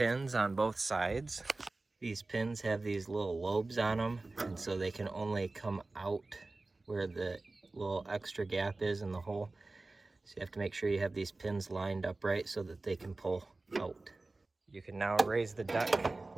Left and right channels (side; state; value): left; quieter; 3.2 dB